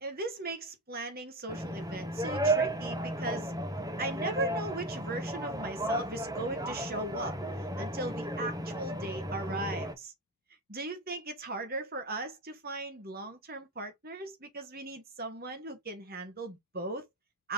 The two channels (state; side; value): normal; both; correlation 0.20